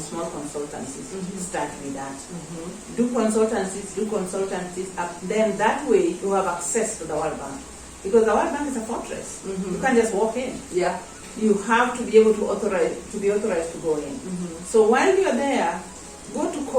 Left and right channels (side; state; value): both; identical; correlation 1.00